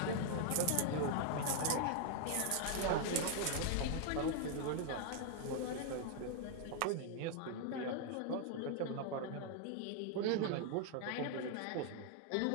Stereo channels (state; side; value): different; both; correlation 0.00